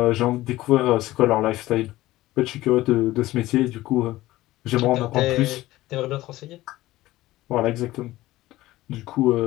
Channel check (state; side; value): quieter; right; 16.9 dB